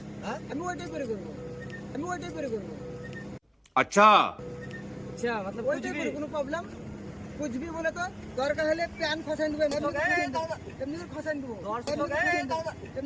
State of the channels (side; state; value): both; identical; correlation 1.00